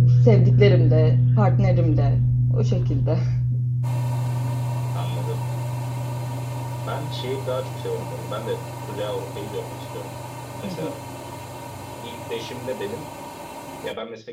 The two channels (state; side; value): identical; both; correlation 1.00